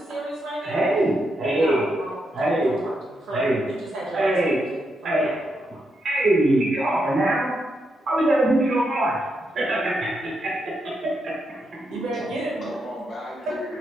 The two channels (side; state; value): both; normal; correlation 0.82